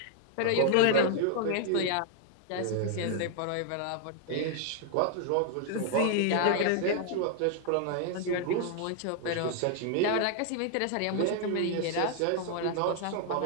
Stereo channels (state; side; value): different; both; correlation 0.00